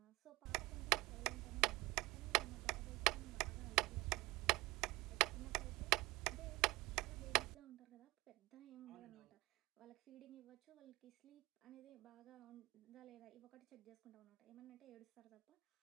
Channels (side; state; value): left; quieter; 21.0 dB